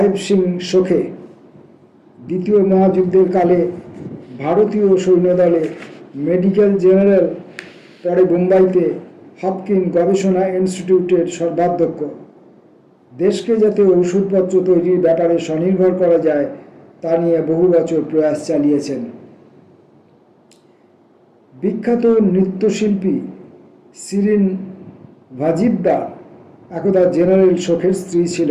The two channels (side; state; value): both; identical; correlation 1.00